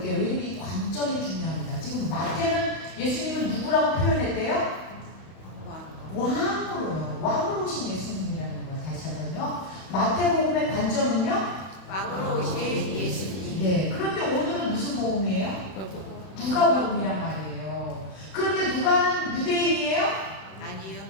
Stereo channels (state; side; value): late; right; 31 ms